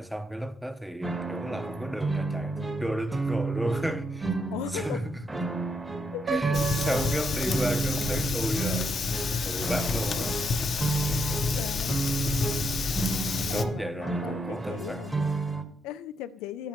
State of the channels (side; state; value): both; normal; correlation 0.78